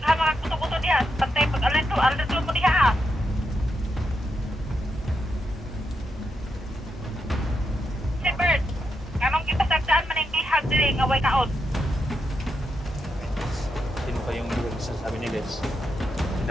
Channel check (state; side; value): normal; both; correlation 0.84